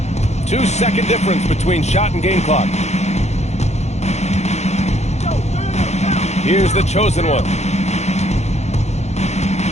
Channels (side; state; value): right; late; 0.32 ms